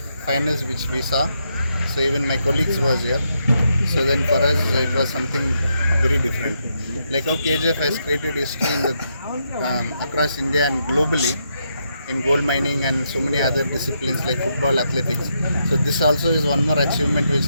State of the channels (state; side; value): inverted; both; correlation -0.80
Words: finals which we saw, so even my colleagues was here. So then for us it was something very different. Like how KGF has created history in the, across India and globally in gold mining and so many other disciplines like football, athletics. So this also is one more achievement which